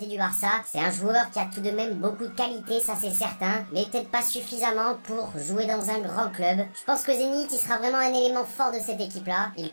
du Barça. C'est un joueur qui a tout de même beaucoup de qualité, ça c'est certain, mais peut-être pas suffisamment pour jouer dans un grand club. Je pense que Zénith, il sera vraiment un élément fort de cette équipe-là. Il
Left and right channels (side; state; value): both; inverted; correlation -1.00